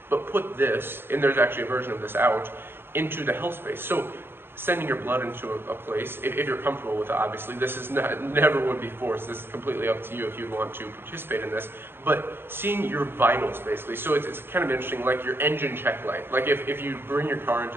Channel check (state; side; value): late; left; 0.11 ms